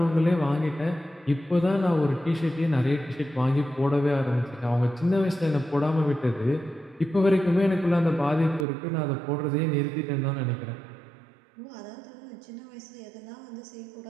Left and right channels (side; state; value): left; drops out; at 8.7 s